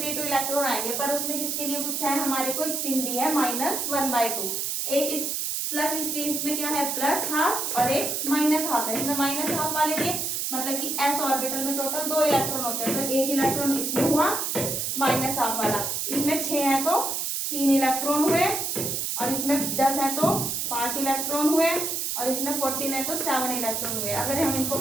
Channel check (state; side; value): noise; right; hiss, 1 dB below the sound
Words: इलेक्ट्रॉन आएंगे, पर उसमें किसके लिए पूछा है, हमारे को स्पिन दी है -1/2, एक इस प्लस स्पिन में क्या है +½ और एक -½ है, इसमें -½ वाले दिए मतलब कि s ऑर्बिटल में टोटल 2 इलेक्ट्रॉन होते हैं, तो 1 इलेक्ट्रॉन इसमें हुआ माइनस हाफ वाला, इसमें 6 है तो 3 इलेक्ट्रॉन हुए, और इसमें 10 है तो 5 इलेक्ट्रॉन हुए, और इसमें 14 है तो 7 इलेक्ट्रॉन हुए। अगर हम इनको